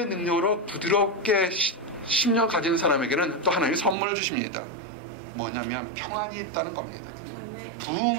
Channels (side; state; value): left; drops out; at 4.0 s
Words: 능력으로 부드럽게 심령 가진 사람에게는 또 하나님이 선물을 주십니다. 뭐냐면 평안이 있다는 겁니다.